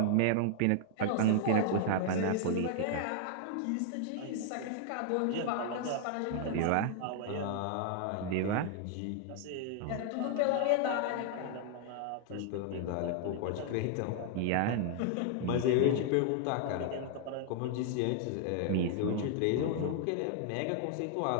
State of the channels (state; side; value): different; both; correlation 0.00